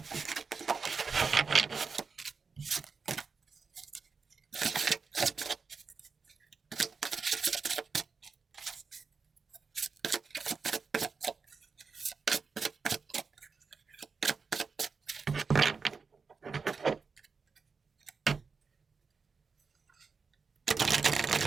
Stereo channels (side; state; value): left; quieter; 5.1 dB